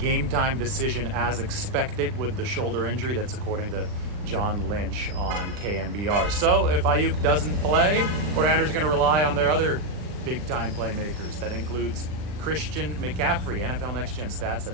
time decision as expected with the shoulder injury. That's according to John Lynch on KMBR. So if Aiyuk doesn't play, 49ers are going to rely on their other big time playmakers. That includes Christian McCaffrey. NFL Next Gen Stats had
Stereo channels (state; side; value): late; left; 39 ms